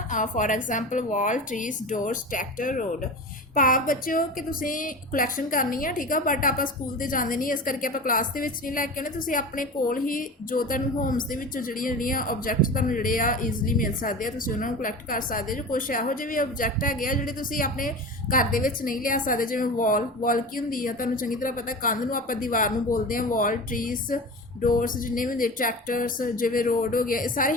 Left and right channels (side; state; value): both; normal; correlation 0.31